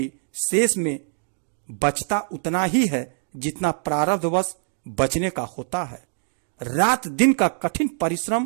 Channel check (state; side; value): silent; left; 63 dB below the other